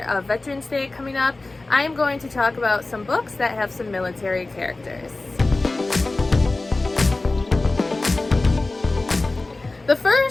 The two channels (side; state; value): right; quieter; 3.2 dB